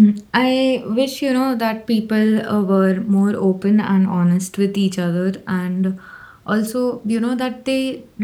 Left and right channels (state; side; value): identical; both; correlation 1.00